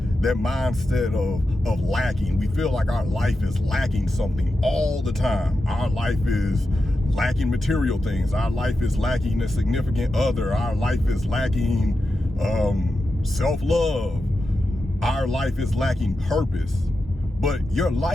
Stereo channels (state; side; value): normal; both; correlation 0.90